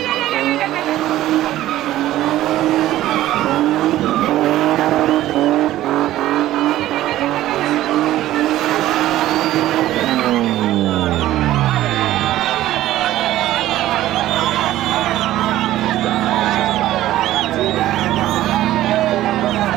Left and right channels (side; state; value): left; quieter; 14.4 dB